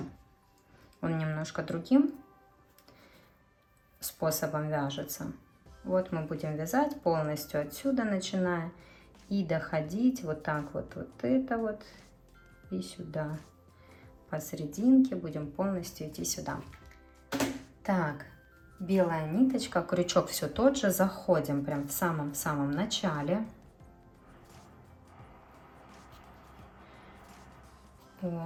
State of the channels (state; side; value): identical; both; correlation 1.00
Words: Он немножко другим способом вяжется. Вот мы будем вязать полностью отсюда, начиная и доходить вот так вот, вот это вот и сюда. Посерединке будем полностью идти сюда. Так, белая ниточка, крючок все тот же, заходим прям в самом-самом начале.